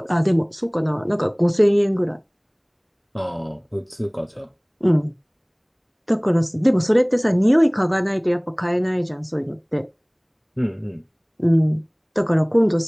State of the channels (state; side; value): identical; both; correlation 1.00